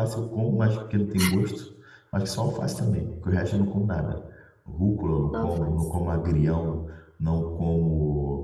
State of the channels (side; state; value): both; identical; correlation 1.00